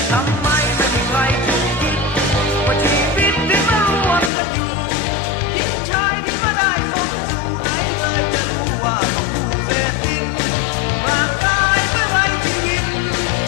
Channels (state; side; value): drops out; right; at 4.3 s